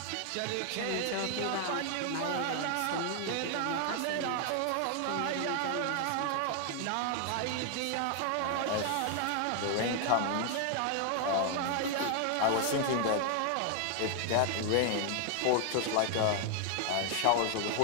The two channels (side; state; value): both; different; correlation 0.00